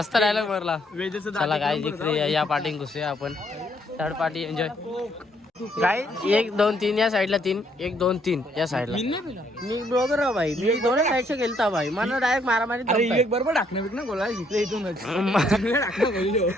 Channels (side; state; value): both; normal; correlation 0.69